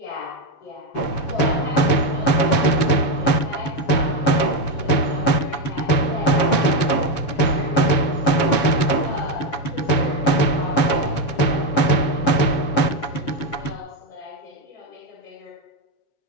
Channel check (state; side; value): late; right; 7.1 ms